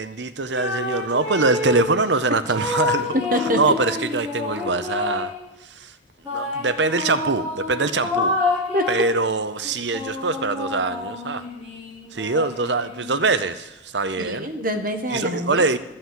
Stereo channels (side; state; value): both; normal; correlation 0.00